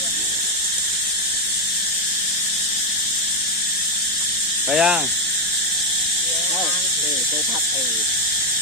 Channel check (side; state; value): both; normal; correlation 0.05